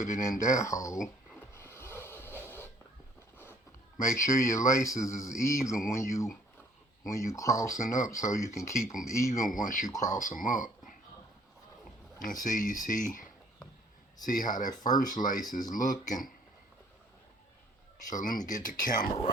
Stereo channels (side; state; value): both; normal; correlation 0.60